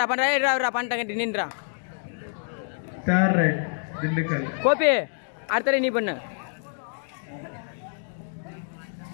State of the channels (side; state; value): right; silent; digital silence